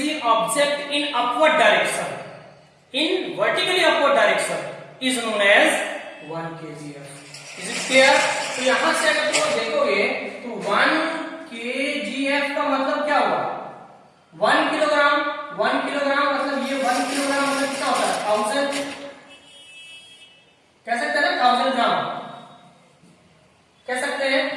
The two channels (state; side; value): identical; both; correlation 1.00